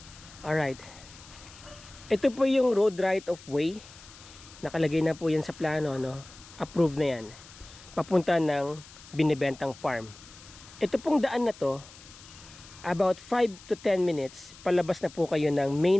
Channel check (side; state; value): left; noise; hiss, 20 dB below the sound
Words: Alright. Ito po yung road right of way. Nakalagay na po yan sa plano, no? Approved na yan. Papunta ng binibentang farm. Ito pong daan na to, about 5 to 10 minutes, palabas na po kayo ng